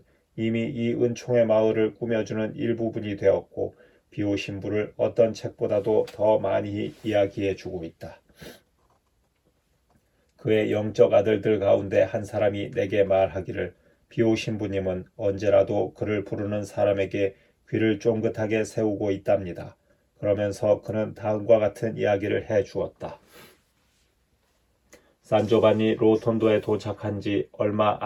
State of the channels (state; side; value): identical; both; correlation 1.00